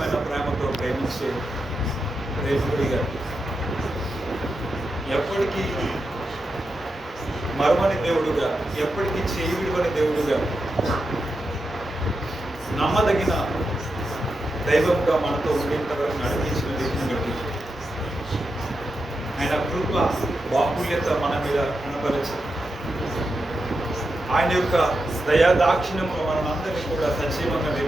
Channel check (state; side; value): normal; both; correlation 0.88